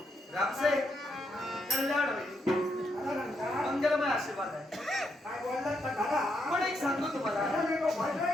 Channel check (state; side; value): normal; both; correlation 0.79